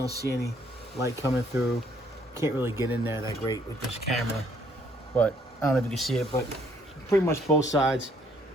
see any light coming through. Can't really get in there that great with this camera, but I don't know if you can see it, but pretty much both sides.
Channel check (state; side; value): normal; both; correlation 0.66